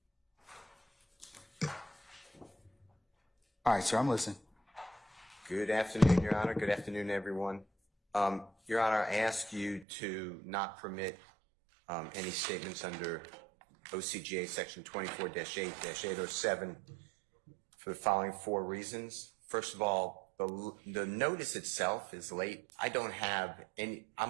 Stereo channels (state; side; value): drops out; left; at 9.9 s